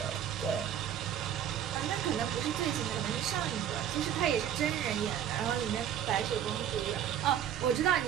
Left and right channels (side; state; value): left; quieter; 9.8 dB